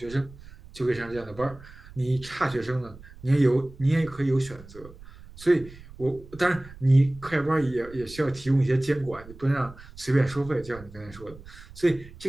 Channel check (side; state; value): right; noise; rumble, 19 dB below the sound